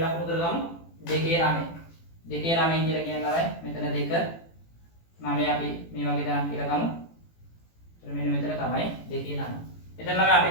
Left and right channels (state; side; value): late; right; 18 ms